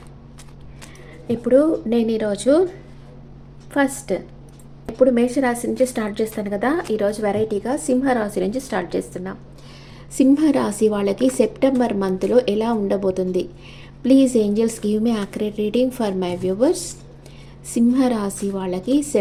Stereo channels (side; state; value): both; identical; correlation 1.00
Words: ఇప్పుడు నేను ఈరోజు ఫస్ట్ ఇప్పుడు మేషరాశి నుంచి స్టార్ట్ చేస్తాను కదా. ఈరోజు వెరైటీగా సింహరాశి నుంచి స్టార్ట్ చేస్తున్నాం. సింహరాశి వాళ్ళకి సెప్టెంబర్ మంత్లో ఎలా ఉండబోతుంది? Please angels give me accurate reading for my viewers. సింహరాశి వాళ్ళకి